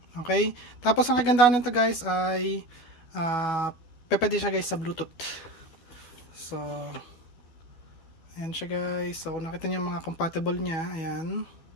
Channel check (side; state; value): right; late; 12 ms